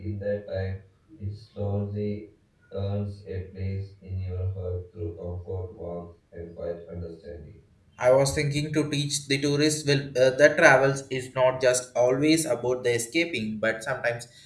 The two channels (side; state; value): both; identical; correlation 1.00